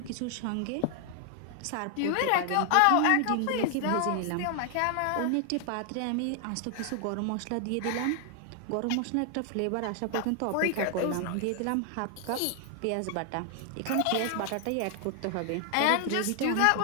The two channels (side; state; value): both; different; correlation 0.00